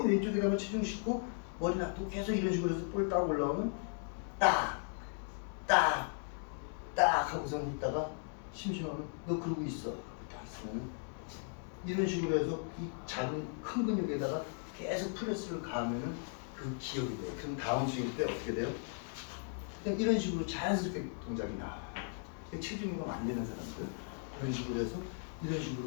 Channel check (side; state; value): right; silent; 53 dB below the other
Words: 왼쪽에다가 체중 싣고 머리 놔두고 계속 이런 식으로 해서 볼 딱 올라오면 딱 하고선 있다가 심심하면 너 그러고 있어. 딱 있으면 이런 식으로 해서 이 작은 큰 근육에다가 계속 프레스를 가하면은 그 기억이 돼요. 그럼 다음 스윙 때 어떻게 돼요? 그냥 이런 식으로 자연스럽게 동작이 나와요. 체중이가 안 되는 사람들 이런 식으로 해서 이런